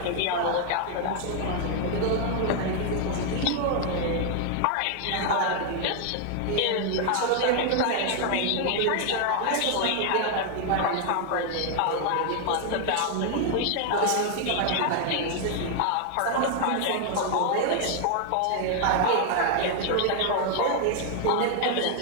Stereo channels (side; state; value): both; different; correlation 0.00